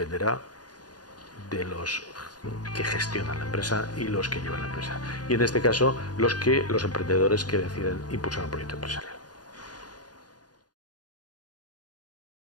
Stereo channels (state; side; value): late; right; 0.69 ms